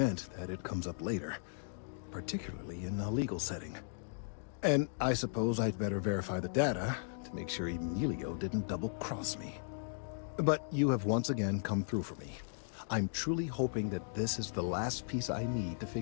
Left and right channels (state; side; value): silent; right; digital silence